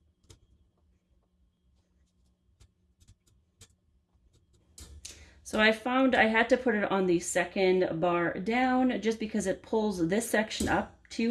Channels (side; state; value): both; identical; correlation 1.00